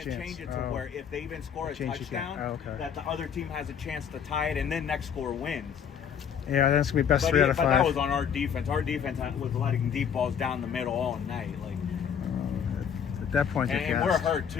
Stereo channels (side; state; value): right; quieter; 7.8 dB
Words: chance. change it to where if they even score a Change it again. touchdown, Okay. that the other team has a chance to tie it, and then next score wins. Yeah, then it's gonna be best 3 out of 5. But that was on our defense. Our defense was letting deep balls down the middle all night, like. At that point, And we're hurt